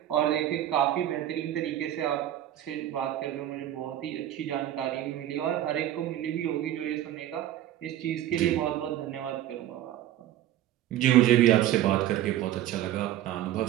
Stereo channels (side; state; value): left; quieter; 12.7 dB